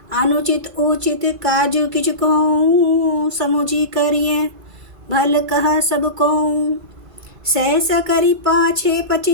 अनुचित उचित काजू किच कहूँ, समुझी करिए भल कहा सब को। सहसा करी पाछे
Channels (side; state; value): left; late; 1.5 ms